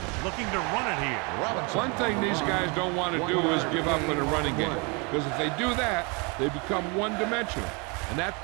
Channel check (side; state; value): left; quieter; 31.2 dB